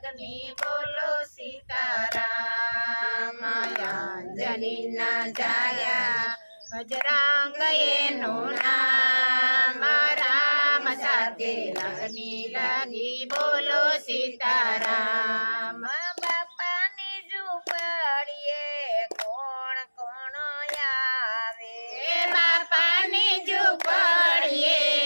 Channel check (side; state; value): both; inverted; correlation -1.00